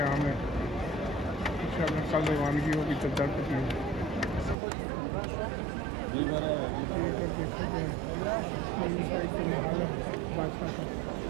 है। इंशाअल्लाह कल रवानगी होगी चद्दर पे। ये अगर देखा जाए मेरी साइड पे महल है बादशाह का,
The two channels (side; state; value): left; drops out; at 4.5 s